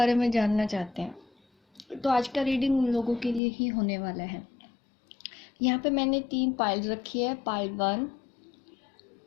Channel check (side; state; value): right; drops out; at 3.4 s